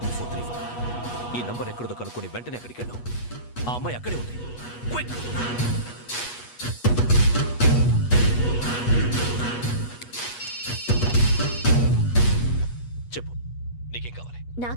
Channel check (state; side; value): late; right; 8.3 ms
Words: ఈ నంబర్ ఎక్కడదో కనుక్కొని వెంటనే అక్కడికి వెళ్ళాం. ఆ అమ్మాయి అక్కడే ఉంది. క్విక్! చెప్పు, నీకేం కావాలి?